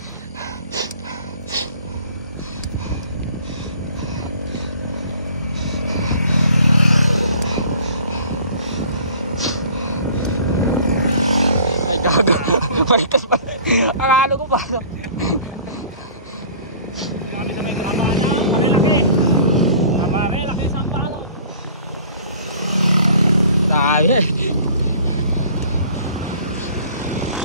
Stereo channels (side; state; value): both; inverted; correlation -0.48